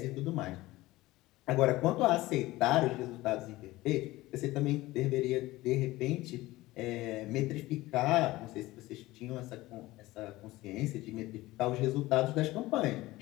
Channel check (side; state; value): right; quieter; 18.5 dB